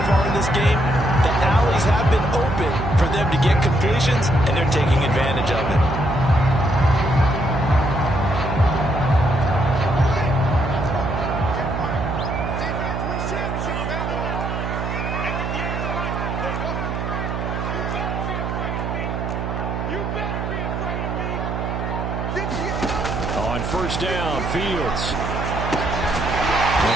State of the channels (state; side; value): noise; right; hum, 3 dB below the sound